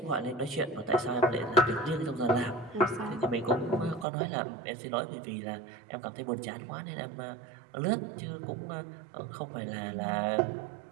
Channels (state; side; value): drops out; left; at 4.0 s